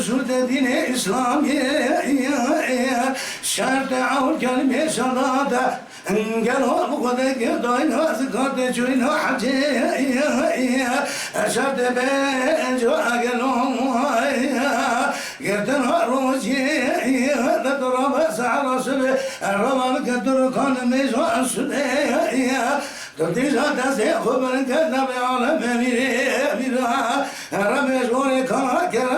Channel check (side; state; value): both; identical; correlation 1.00